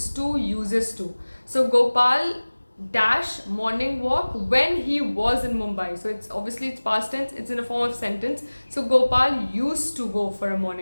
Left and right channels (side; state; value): both; inverted; correlation -1.00